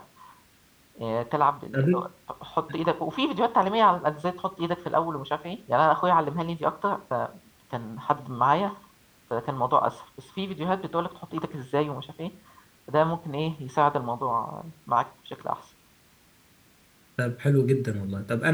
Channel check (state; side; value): identical; both; correlation 1.00